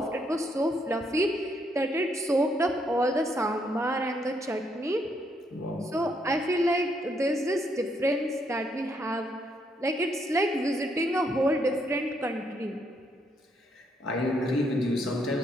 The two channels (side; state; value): both; normal; correlation 0.74